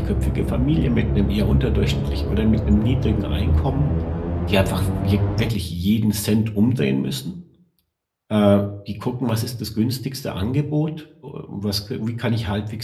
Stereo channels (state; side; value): identical; both; correlation 1.00